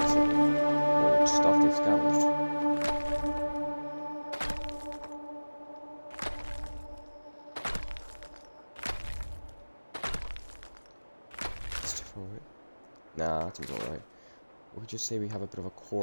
Old stuff they've scavenged. Nah, that seems alright. We could just say we have a bit of a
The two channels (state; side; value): inverted; both; correlation -1.00